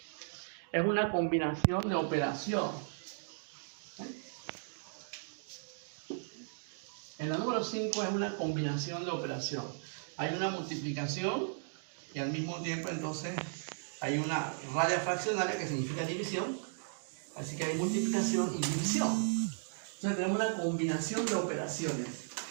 es una combinación de operación. En la número 5 es una combinación de operación. Hay una multiplicación y al mismo tiempo entonces hay una raya fraccionaria que significa división. Así que hay multiplicación y división. Entonces tenemos una combinación de operaciones.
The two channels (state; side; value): silent; left; digital silence